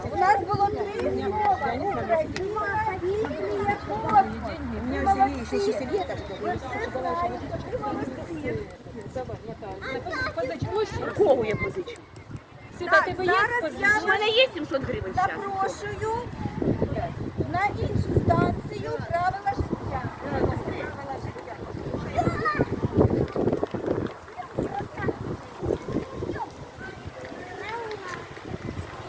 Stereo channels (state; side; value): identical; both; correlation 1.00